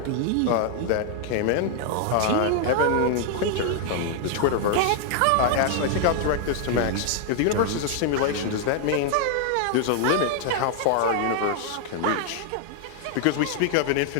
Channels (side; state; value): both; different; correlation 0.00